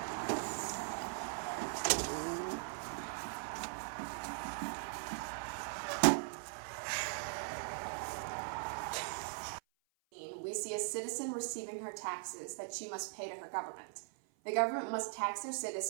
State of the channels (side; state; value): left; silent; 51 dB below the other